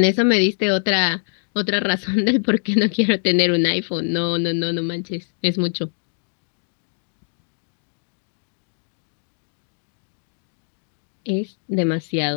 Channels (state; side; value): silent; right; 63 dB below the other